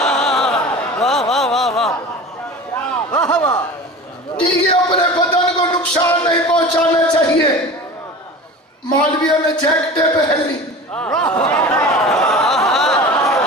ٹھیک ہے، اپنے بدن کو نقصان نہیں پہنچانا چاہیے۔ مولویوں نے جیکٹیں پہن لی،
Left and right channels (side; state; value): both; normal; correlation 0.35